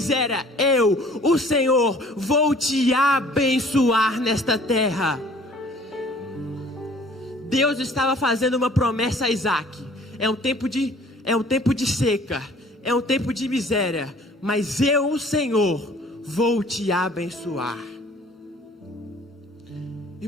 eu, o Senhor, vou te abençoar nesta terra. Deus estava fazendo uma promessa a Isaque. É um tempo de seca, é um tempo de miséria, mas eu, o Senhor, vou te abençoar.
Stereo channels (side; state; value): both; normal; correlation 0.53